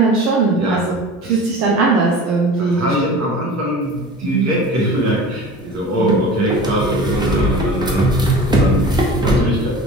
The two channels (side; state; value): both; normal; correlation 0.38